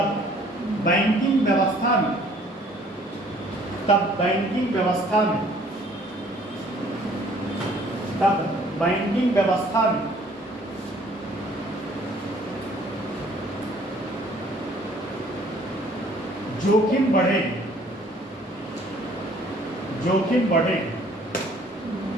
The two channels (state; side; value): normal; both; correlation 0.58